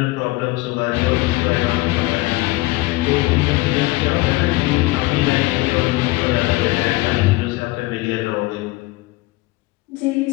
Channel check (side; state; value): right; quieter; 20.8 dB